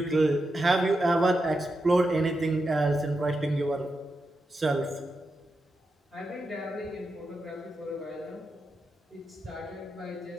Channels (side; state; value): both; normal; correlation 0.87